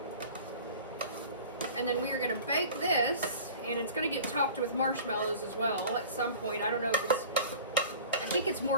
And then we are gonna bake this, and it's gonna get topped with marshmallows as well at some point. I don't know if I think it's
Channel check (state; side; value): inverted; both; correlation -0.42